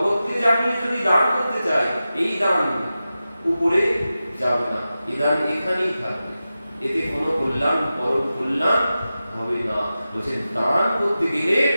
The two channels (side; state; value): both; inverted; correlation -0.93